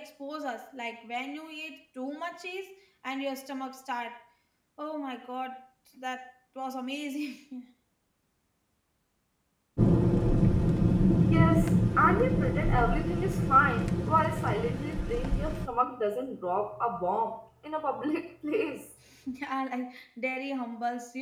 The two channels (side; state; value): both; identical; correlation 1.00